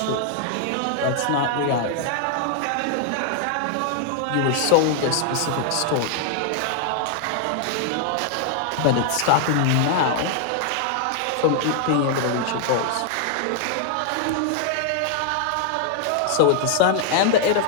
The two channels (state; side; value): different; both; correlation 0.00